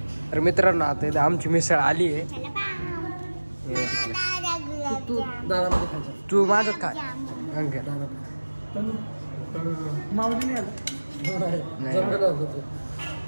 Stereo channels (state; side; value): inverted; both; correlation -1.00